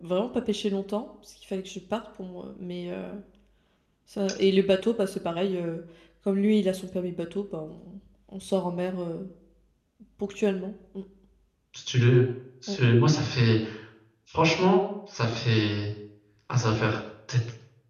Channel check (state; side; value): identical; both; correlation 1.00